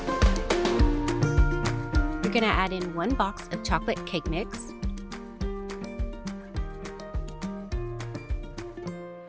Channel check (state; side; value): identical; both; correlation 1.00